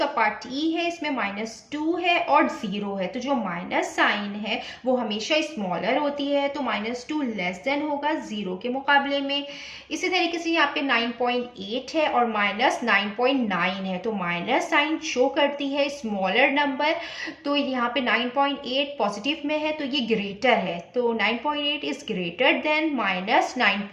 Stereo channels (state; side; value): identical; both; correlation 1.00